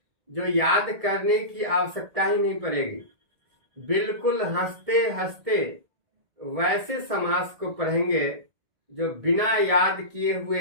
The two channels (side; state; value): left; late; 1.7 ms